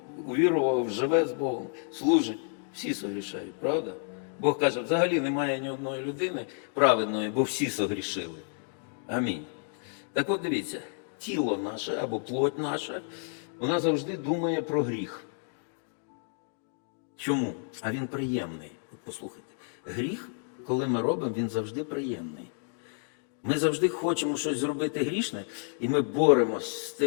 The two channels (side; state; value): right; silent; 58 dB below the other